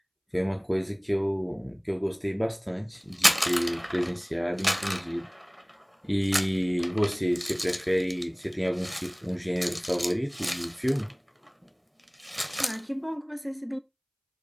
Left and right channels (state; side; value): identical; both; correlation 1.00